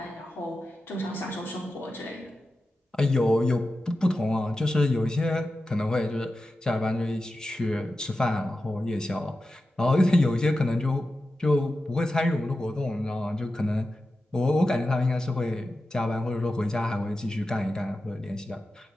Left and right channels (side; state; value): both; normal; correlation 0.92